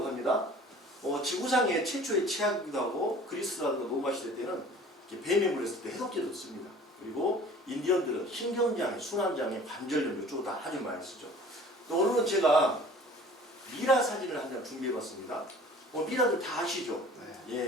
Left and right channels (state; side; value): normal; both; correlation 0.47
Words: 합니다. 지구상의 최초의 치약이기도 하고 그리스라든가 로마 시대 때는 뱀에 물렸을 때 해독제도 씁니다. 그리고 인디언들은 신경장애, 순환장애, 관절염 이쪽으로 다 아주 많이 쓰죠. 또 오늘은 제가 미라 사진을 한 장 준비해봤습니다. 미라들 다 아시죠? 네.